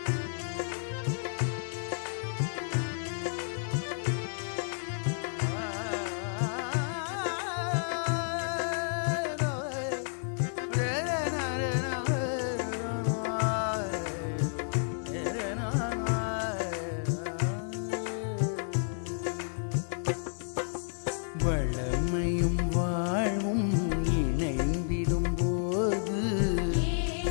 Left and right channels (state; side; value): silent; right; digital silence